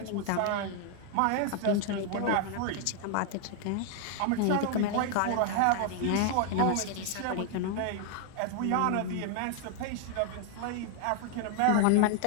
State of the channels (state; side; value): different; both; correlation 0.00